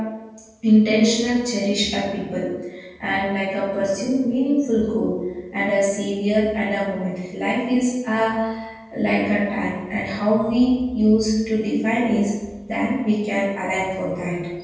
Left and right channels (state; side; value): identical; both; correlation 1.00